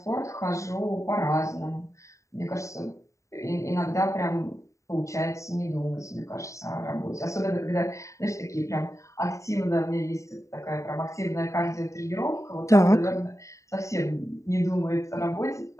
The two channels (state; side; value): late; right; 0.15 ms